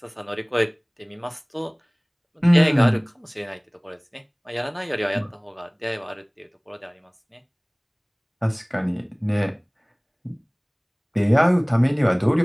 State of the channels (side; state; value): both; identical; correlation 1.00